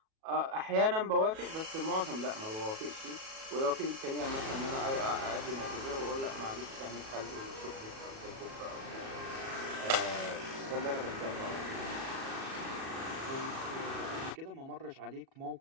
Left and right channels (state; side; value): late; left; 37 ms